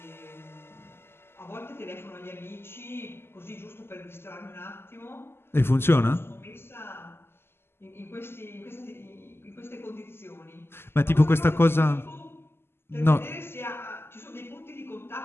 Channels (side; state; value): right; late; 0.12 ms